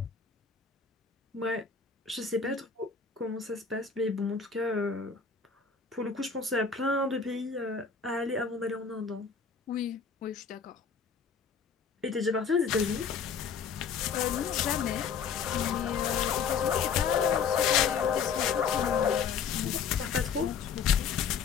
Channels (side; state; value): right; quieter; 6.1 dB